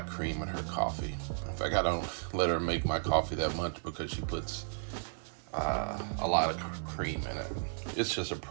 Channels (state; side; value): silent; left; digital silence